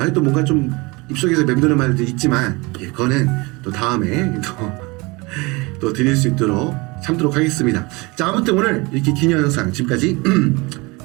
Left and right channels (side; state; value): left; quieter; 25.2 dB